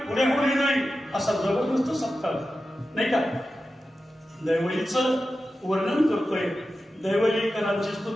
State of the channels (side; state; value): both; normal; correlation 0.92